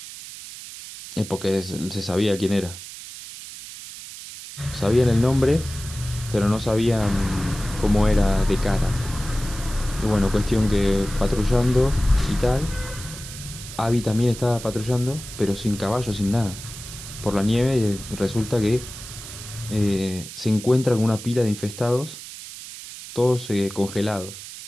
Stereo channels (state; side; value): noise; right; hiss, 13 dB below the sound